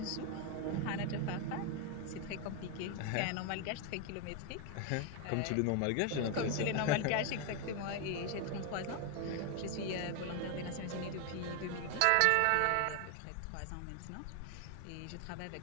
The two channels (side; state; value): both; different; correlation 0.01